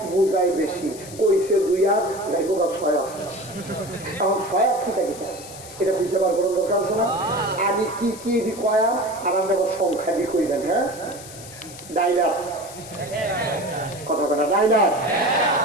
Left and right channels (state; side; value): noise; left; hiss, 15 dB below the sound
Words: বুঝাই বেশি, কইছে দুই হাত, যাইব 6 হাত। এখন 6 হাত কি থাকে এটা বুঝতে পারবো দরকার আছে না? আমি কি কি কয়াম আর আমরা সংখ্যা দিয়ে কইবেন। হ্যাঁ, ডাইলার কথা কথা, ডাইলার